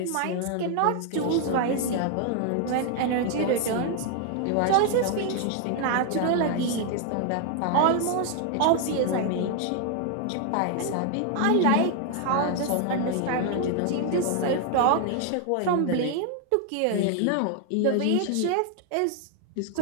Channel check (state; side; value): different; both; correlation 0.00